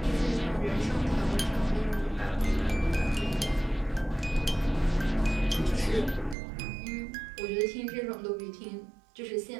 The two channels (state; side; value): drops out; left; at 6.4 s